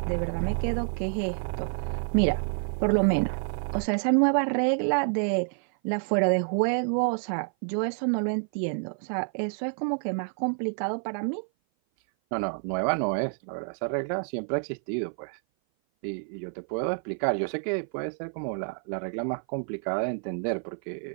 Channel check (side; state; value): left; silent; 56 dB below the other